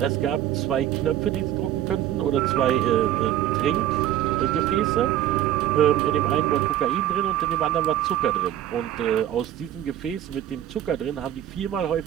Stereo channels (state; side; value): quieter; left; 11.8 dB